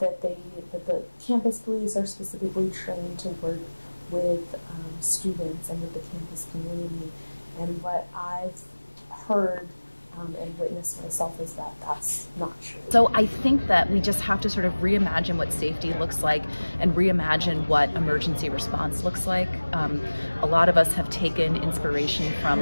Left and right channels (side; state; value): both; inverted; correlation -1.00